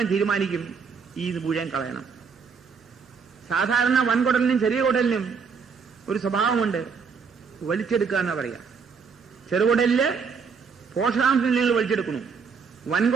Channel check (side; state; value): left; quieter; 5.7 dB